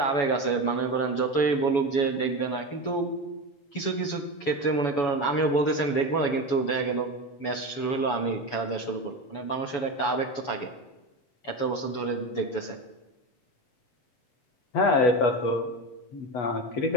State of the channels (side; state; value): right; late; 7.1 ms